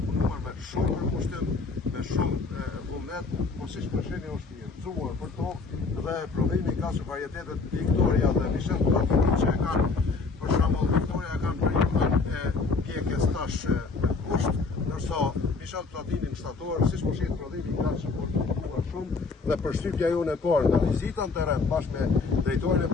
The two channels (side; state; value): right; quieter; 4.2 dB